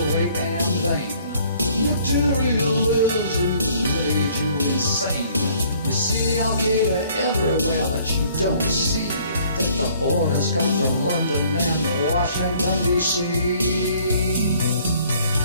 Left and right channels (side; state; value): both; inverted; correlation -0.59